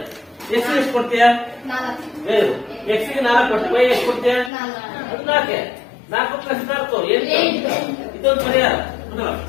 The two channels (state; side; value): drops out; right; at 4.5 s